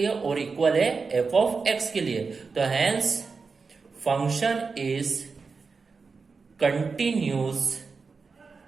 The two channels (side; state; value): left; quieter; 4.7 dB